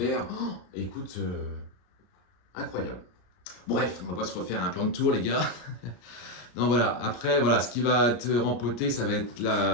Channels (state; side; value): late; right; 34 ms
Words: oh, écoute... incroyable. Bref, on va pas se refaire un plan de tour, les gars. Non, voilà. Après, voilà, ce qui va être rempoté, ça va être